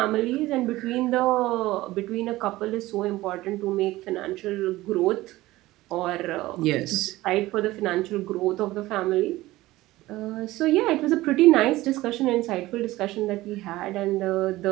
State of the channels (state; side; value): quieter; left; 17.7 dB